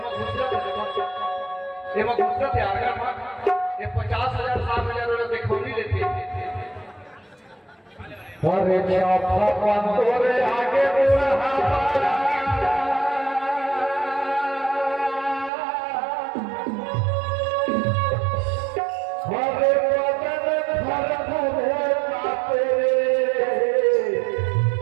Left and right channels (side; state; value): left; drops out; at 15.5 s